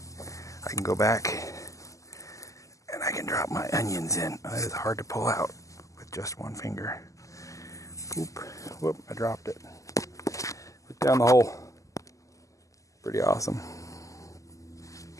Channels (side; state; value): right; late; 0.16 ms